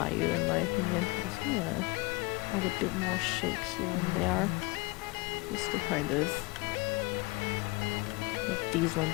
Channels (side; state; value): right; quieter; 23.7 dB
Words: in my opinion. I'm just gonna add a bit more shape here and there, just to kind of make these